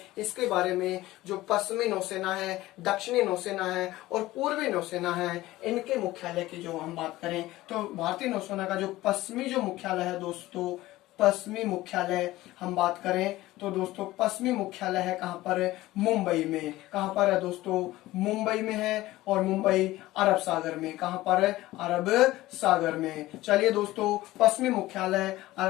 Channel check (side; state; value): right; quieter; 17.1 dB